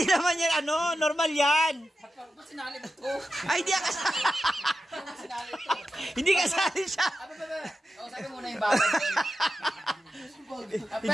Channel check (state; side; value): normal; both; correlation 0.91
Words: naman yan, ano, normal yan. Ba't sinali ito? Ay, hindi kasali. Hindi kasali siya. O, sabi muna yung bawal.